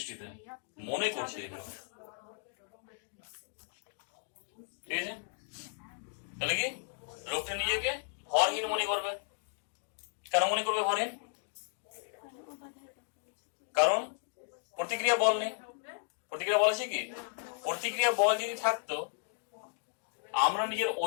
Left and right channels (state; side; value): silent; right; digital silence